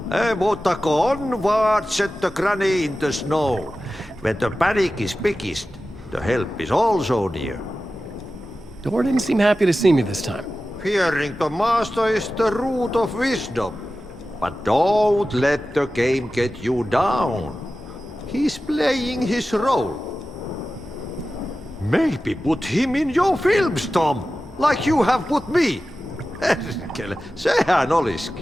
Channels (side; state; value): both; normal; correlation 0.94